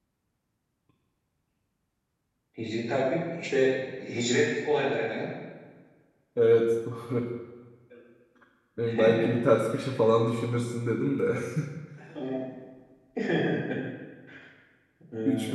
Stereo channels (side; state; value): both; identical; correlation 1.00